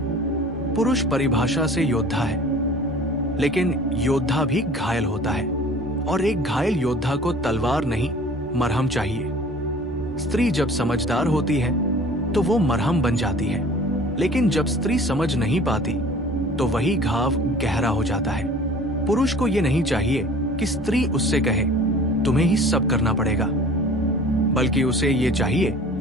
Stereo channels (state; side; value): normal; both; correlation 0.46